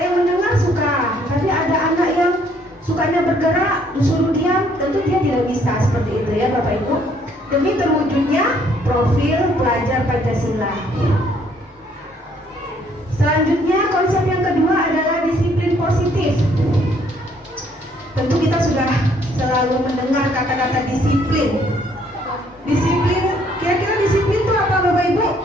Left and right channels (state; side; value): normal; both; correlation 0.65